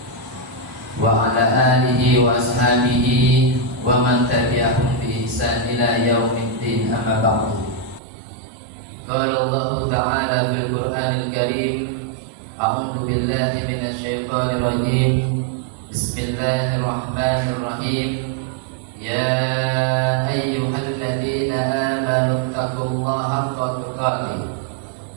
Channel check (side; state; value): left; drops out; at 8.0 s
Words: wa ala alihi wa ashabihi wa man tabi'ahum bi ihsan ila yaumiddin, amma ba'du. Qala Allah ta'ala fil Qur'anil Karim, a'udzu billahi minasy syaithanir rajim. Bismillahirrahmanirrahim. Ya ayyuhalladzina amanu taqullaha haqqa tuqatih